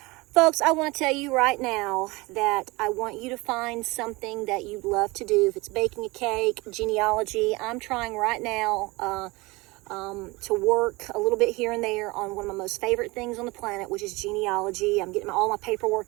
Folks, I want to tell you right now that I want you to find something that you love to do. If it's baking a cake, genealogy, I'm trying right now to work a little bit here and there on one of my most favorite things on the planet, which is genealogy. I'm getting all my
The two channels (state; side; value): quieter; left; 23.6 dB